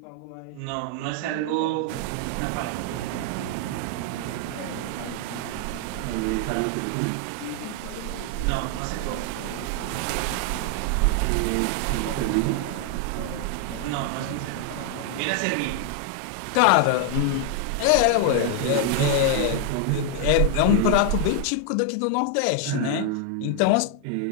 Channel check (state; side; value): different; both; correlation 0.00